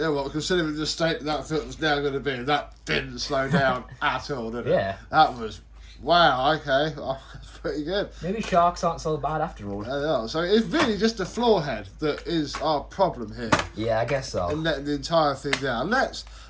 well, considering the state that filter's now going to be, that didn't slow down at all, did it? Yeah. That was, wow, okay, oh, that's pretty good. Maybe sharks aren't so bad after all. Yeah, so it's really just the floor head that is our problem here, Yeah, I guess so. and letting the entire thing down. Let's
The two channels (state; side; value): identical; both; correlation 1.00